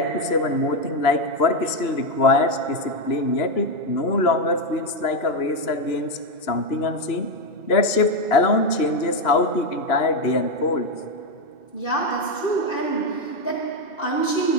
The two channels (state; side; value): late; right; 2.9 ms